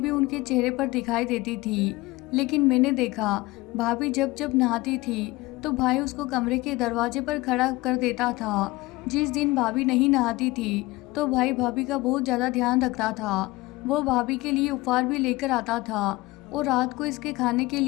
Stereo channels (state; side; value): quieter; right; 20.5 dB